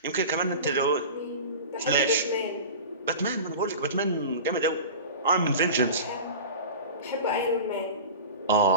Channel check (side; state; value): both; inverted; correlation -0.32